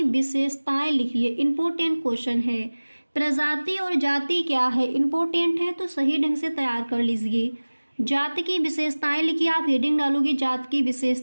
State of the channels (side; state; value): both; inverted; correlation -1.00